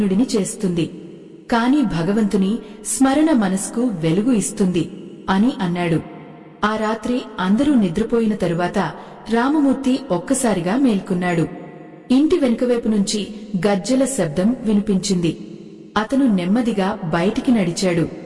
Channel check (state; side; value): identical; both; correlation 1.00